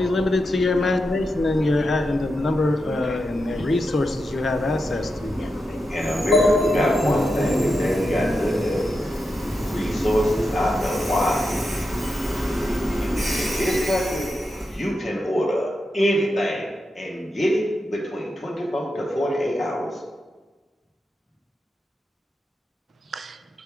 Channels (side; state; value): both; normal; correlation 0.88